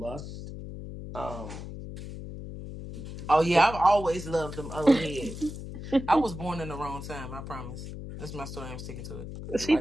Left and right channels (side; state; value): left; noise; hum, 9 dB below the sound